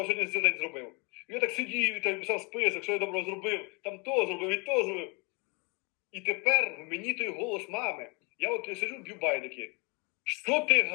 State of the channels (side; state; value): right; quieter; 31.2 dB